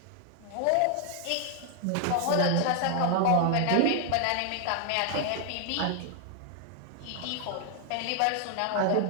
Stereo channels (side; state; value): both; different; correlation 0.00